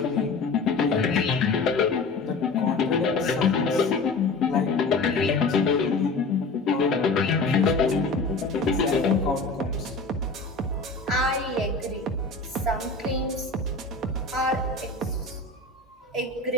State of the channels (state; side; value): quieter; right; 3.7 dB